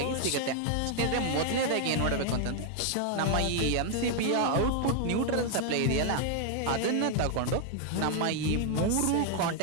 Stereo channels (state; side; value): different; both; correlation 0.00